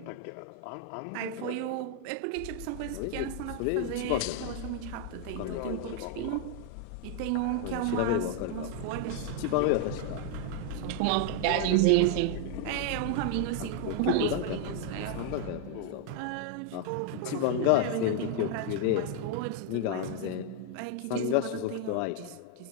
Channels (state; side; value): different; both; correlation 0.00